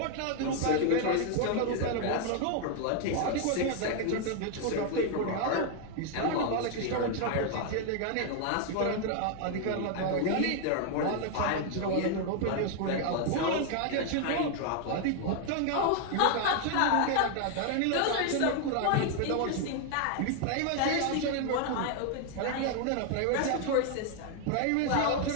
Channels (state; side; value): different; both; correlation 0.00